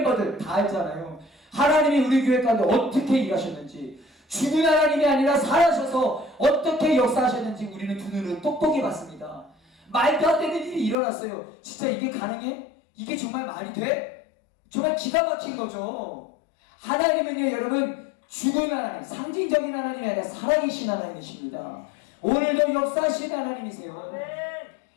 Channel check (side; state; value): right; drops out; at 11.0 s